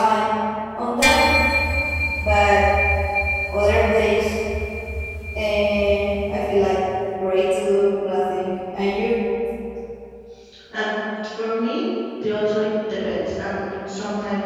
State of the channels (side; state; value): both; identical; correlation 1.00